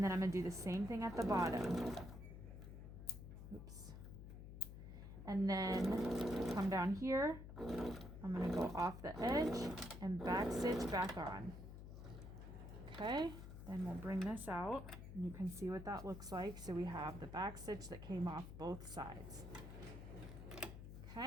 then I'm going to do the same thing at the bottom. Oops. And then come down here. I'm going to go off the edge and back stitch back on. Okay, then we'll bring this out. And you can see what that looks like. So we have the back stitch that came off both sides.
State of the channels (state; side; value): noise; left; hum, 11 dB below the sound